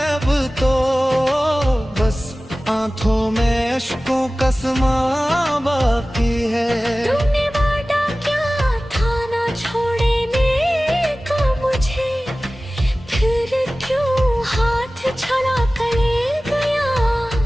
अब तो, बस आंखों में अश्कों का समा बाकी है। तूने वादा क्या था ना छोड़ने का मुझे, फिर क्यों हाथ छड़ा कर ले गया।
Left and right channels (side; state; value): both; normal; correlation 0.97